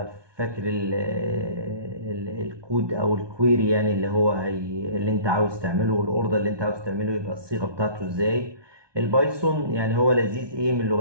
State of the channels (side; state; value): left; late; 1.2 ms